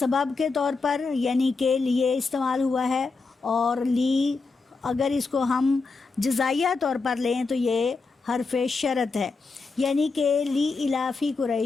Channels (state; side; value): quieter; right; 4.2 dB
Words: کے طور پر یعنی کہ لیے استعمال ہوا ہے، اور لی اگر اس کو ہم جزائیہ طور پر لیں تو یہ حرف شرط ہے، یعنی کہ لی الافی